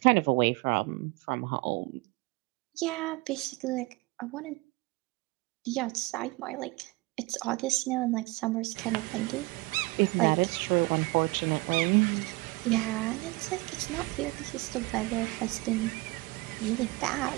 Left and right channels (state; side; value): quieter; left; 23.6 dB